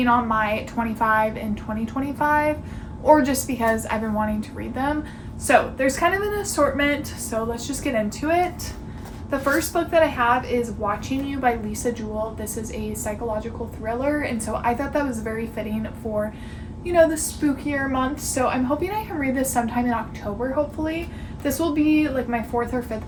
on my 25 and 2025, or just because I've been wanting to read them. So there's kind of an assortment, so let's just get into it. The first book that I have is Watching You by Lisa Jewell. This is a psychological thriller, and so I thought that was very fitting for, you know, the spookier month. So I'm hoping I can read this sometime in October, hopefully. This will be like my 4th or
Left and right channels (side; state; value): both; identical; correlation 1.00